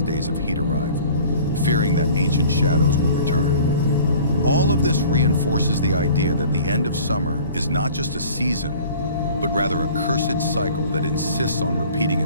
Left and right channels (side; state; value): both; inverted; correlation -0.47